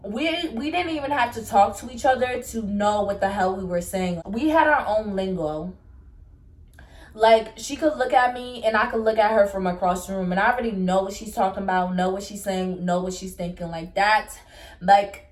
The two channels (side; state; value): both; identical; correlation 1.00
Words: we didn't even have to talk to each other to know what the hell we were saying. We had our own lingo. Like, she could look at me and I could look at her from across the room, and I already know what she's talking about, know what she's saying, know what she's thinking.